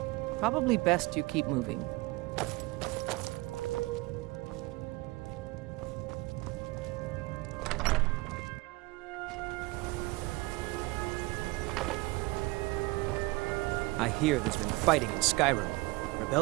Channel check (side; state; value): left; quieter; 22.7 dB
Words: Probably best you keep moving. I hear there's been fighting in Skyrim.